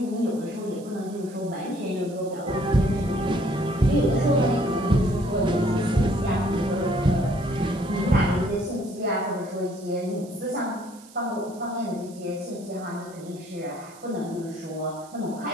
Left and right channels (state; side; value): noise; right; hiss, 22 dB below the sound